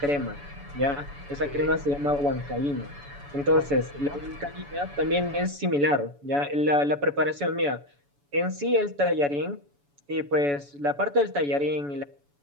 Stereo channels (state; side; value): late; left; 7.0 ms